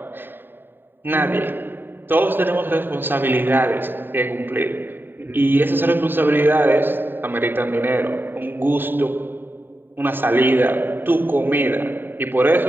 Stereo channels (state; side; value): late; left; 0.095 ms